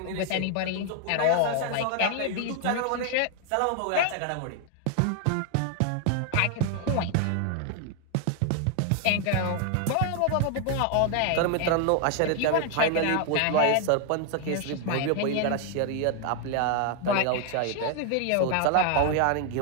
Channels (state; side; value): different; both; correlation 0.00